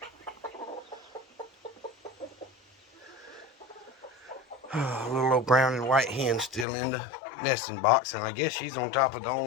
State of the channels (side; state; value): right; drops out; at 6.7 s